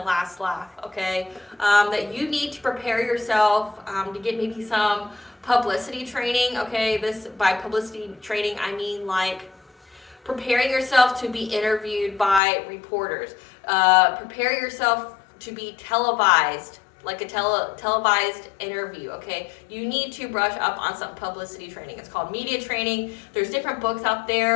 last laugh, okay? That you need to prepare yourself to get maybe some publicity training, okay? This, by publicity training, I mean like Preparing yourself to be interviewed by reporters. Prepare yourself to be televised, like a televised interview, okay? You need to brush up on some publicity training. It's called media training. There's different books out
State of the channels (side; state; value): right; drops out; at 12.4 s